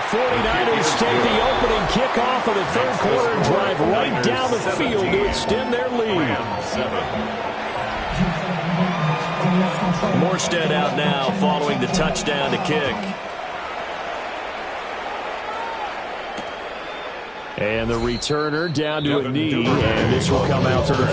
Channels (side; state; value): both; identical; correlation 1.00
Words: take the opening kickoff of the 3rd quarter and drive right down the field to extend their lead. Morstead out now following the touchdown to kick. And the returner down to a knee, and this will come out to the